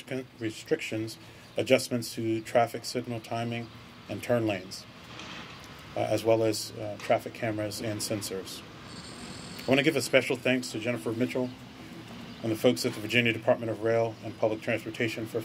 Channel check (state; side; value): identical; both; correlation 1.00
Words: restrictions, adjustments to traffic signal timing and turn lanes, as well as traffic cameras and sensors. I want to give a special thanks to Jennifer Mitchell and the folks at the Virginia Department of Rail and Public Transportation for